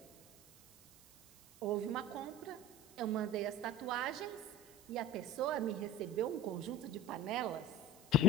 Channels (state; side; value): noise; right; hiss, 24 dB below the sound